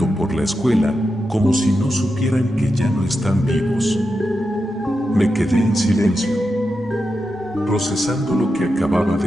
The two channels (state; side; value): normal; both; correlation 0.88